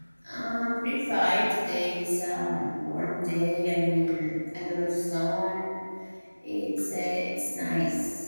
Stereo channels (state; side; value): inverted; both; correlation -1.00